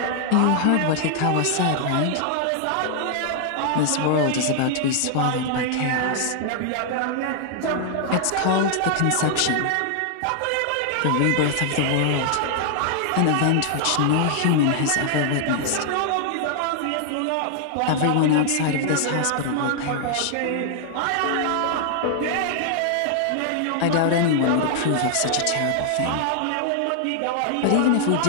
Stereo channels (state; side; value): different; both; correlation 0.00